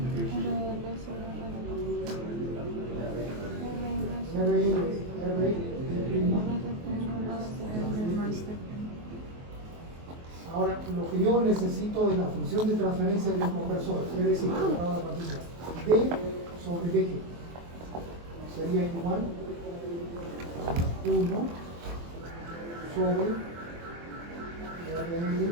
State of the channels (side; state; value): left; late; 23 ms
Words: RL, R, ahora, lo que yo necesito de la función de transferencia del conversor, es decir, D sobre BG sería igual a 1 sobre RL